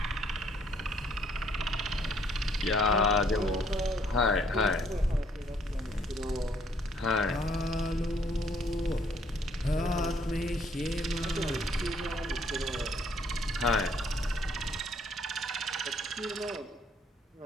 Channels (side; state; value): both; normal; correlation 0.65